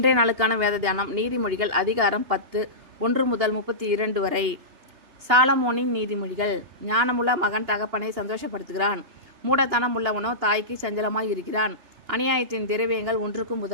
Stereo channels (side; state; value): left; late; 2.9 ms